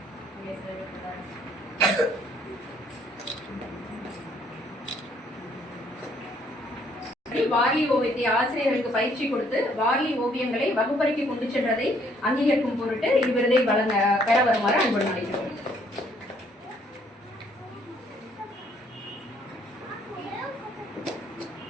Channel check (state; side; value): normal; both; correlation 0.65